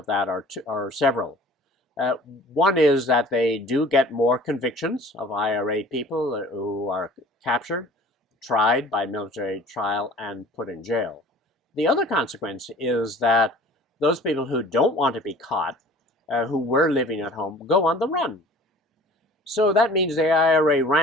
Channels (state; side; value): normal; both; correlation 0.47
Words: that are several. One is that they do get more convictions of IRA people who are captured, tried by military trial, and put in jail. The other consequence is that those people who don't want to be caught, who were living at home, go on the run. So that means the IRA